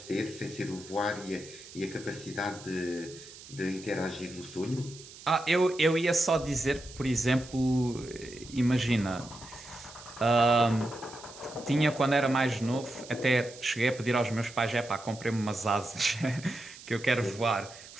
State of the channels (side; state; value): right; noise; hiss, 17 dB below the sound